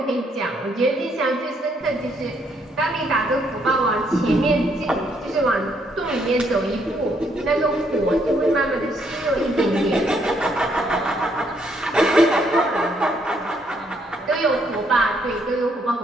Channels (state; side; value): normal; both; correlation 0.71